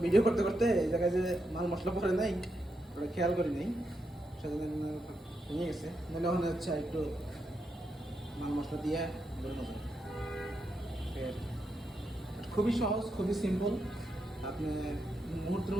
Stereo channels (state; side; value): normal; both; correlation 0.83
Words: ভিডিও করতে করতে এই জায়গায় যে মাল মশলা পড়ে নাই ওটা খেয়াল করি নাই, সেজন্য ভেঙে গেছে। নাহলে ওখানে হচ্ছে একটু মাল মশলা দিয়ে বেরোনো যায়। খুবই সহজ, খুবই সিম্পল, আপনি মুহূর্তের